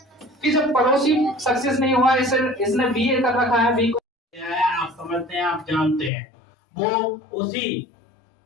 कि जब पड़ोसी सक्सेस नहीं हुआ, इसने बीए कर रखा है, बी आप समझते हैं, आप जानते हैं, वो उसी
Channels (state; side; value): drops out; right; at 6.1 s